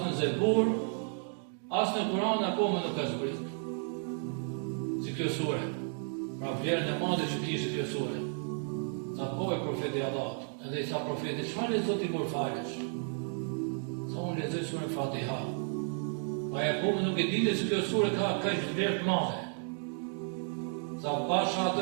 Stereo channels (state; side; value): silent; left; 56 dB below the other